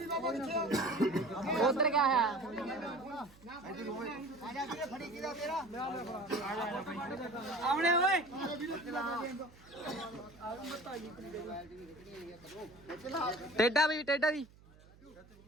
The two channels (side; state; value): right; noise; hum, 24 dB below the sound